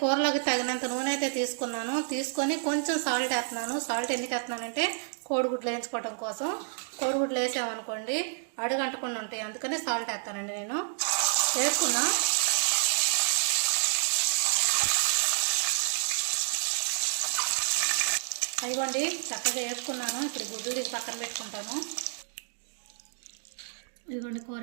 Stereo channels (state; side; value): silent; left; digital silence